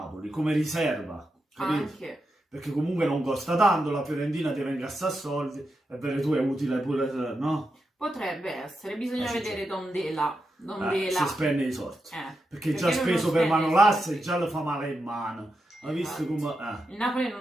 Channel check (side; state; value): both; normal; correlation 0.87